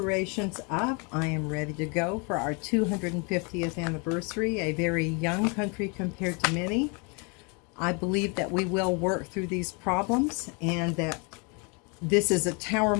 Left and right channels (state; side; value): quieter; right; 32.8 dB